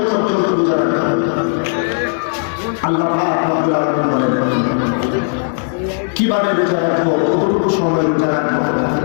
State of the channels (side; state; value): right; silent; 68 dB below the other